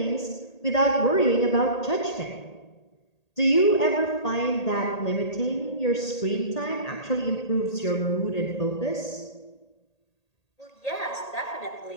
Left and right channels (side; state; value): right; late; 1.8 ms